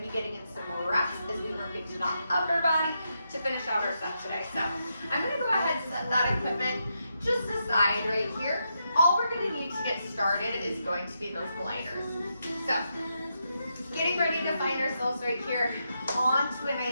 be getting in some more reps as we work into that upper body to finish out our set today. So I'm gonna go ahead and set that equipment just aside right here. All we're gonna need to get started is going to be those gliders. So getting ready to find ourselves right here onto a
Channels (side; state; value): both; inverted; correlation -0.83